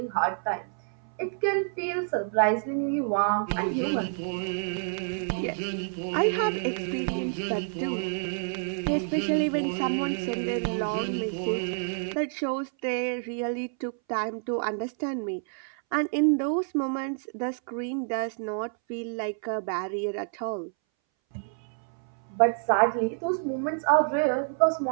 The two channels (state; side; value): silent; left; 59 dB below the other